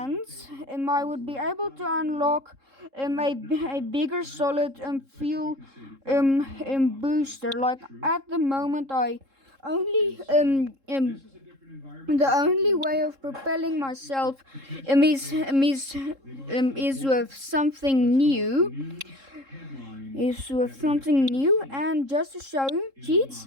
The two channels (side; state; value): left; late; 3.7 ms